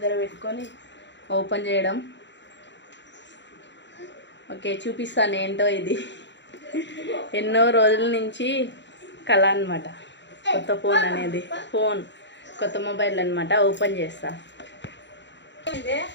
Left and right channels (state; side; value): late; right; 0.52 ms